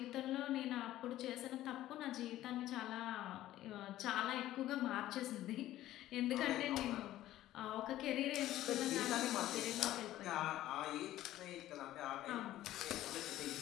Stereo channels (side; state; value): right; quieter; 14.2 dB